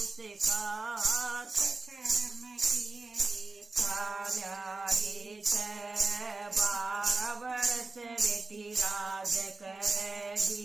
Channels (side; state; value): left; quieter; 3.7 dB